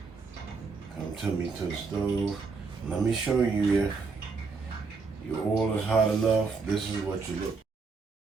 Come to me to the stove. Let me show you if your oil is hot enough. This is what you look.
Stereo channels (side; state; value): left; quieter; 4.6 dB